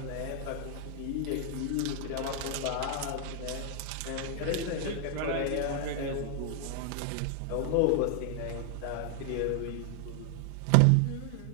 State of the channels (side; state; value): both; different; correlation 0.00